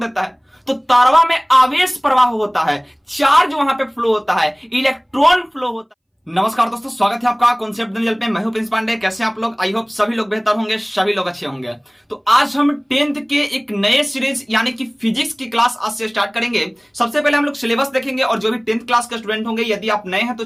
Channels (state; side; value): identical; both; correlation 1.00